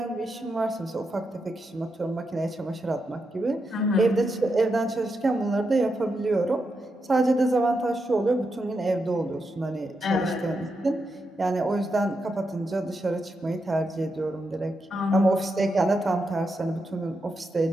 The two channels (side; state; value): both; normal; correlation 0.85